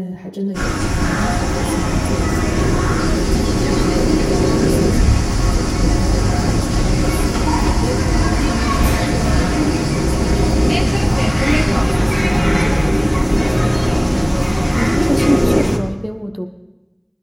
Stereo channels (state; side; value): identical; both; correlation 1.00